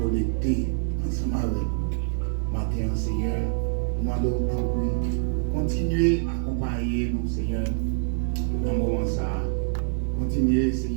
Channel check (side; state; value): left; silent; digital silence